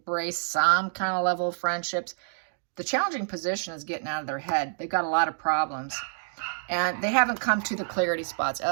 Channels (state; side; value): silent; left; digital silence